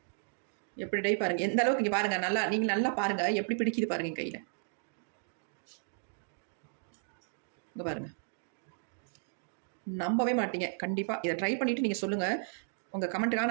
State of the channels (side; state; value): left; silent; digital silence